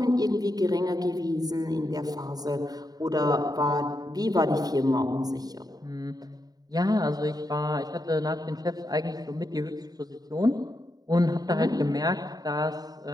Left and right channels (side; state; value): left; late; 0.18 ms